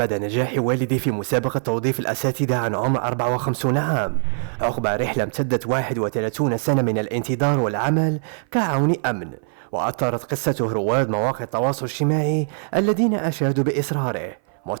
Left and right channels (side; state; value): left; silent; 56 dB below the other